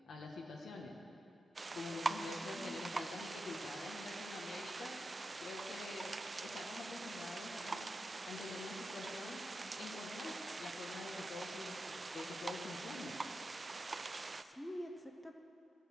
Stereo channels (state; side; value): normal; both; correlation 0.90